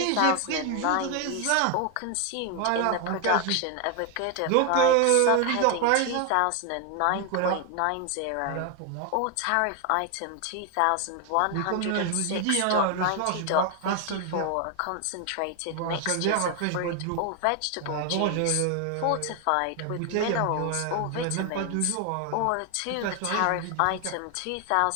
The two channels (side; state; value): both; different; correlation 0.01